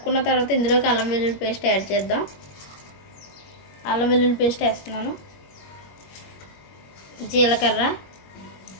తర్వాత ఇందులోకి అల్లం వెల్లుల్లి పేస్ట్ యాడ్ చేద్దాం. అల్లం వెల్లుల్లి పేస్ట్ వేస్తున్నాను, జీలకర్ర,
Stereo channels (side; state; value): right; late; 21 ms